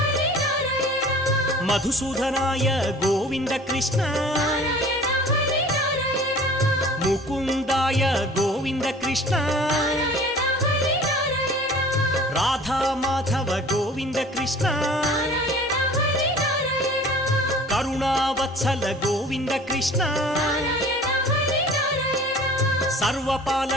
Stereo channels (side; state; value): both; normal; correlation 0.46